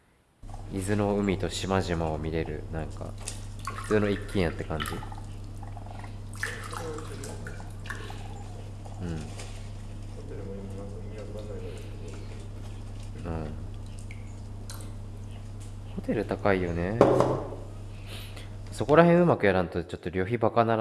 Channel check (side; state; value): both; identical; correlation 1.00